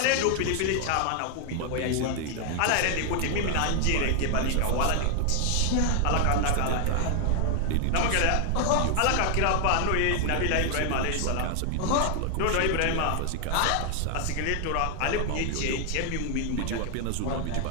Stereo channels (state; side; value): different; both; correlation 0.00